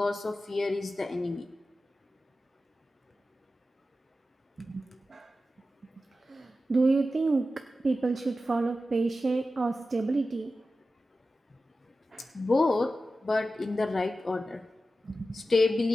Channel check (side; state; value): both; normal; correlation 0.93